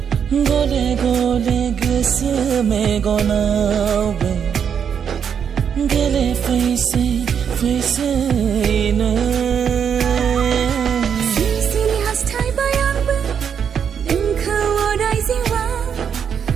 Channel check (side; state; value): left; quieter; 7.6 dB